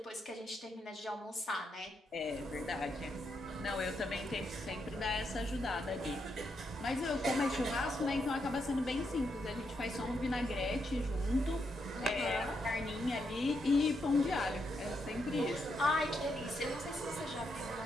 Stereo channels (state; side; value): normal; both; correlation 0.80